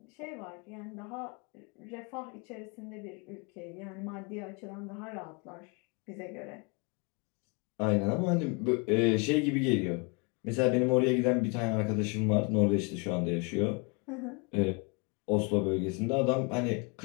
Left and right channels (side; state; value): right; quieter; 32.6 dB